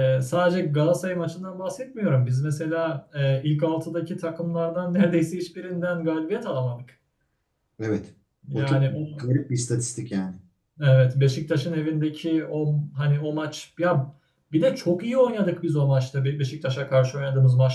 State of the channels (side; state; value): both; identical; correlation 1.00